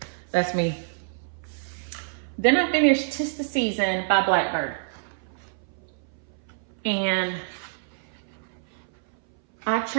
that's me. Then I finished 'Tis the Season by Blackbird. And I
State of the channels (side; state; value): left; silent; 59 dB below the other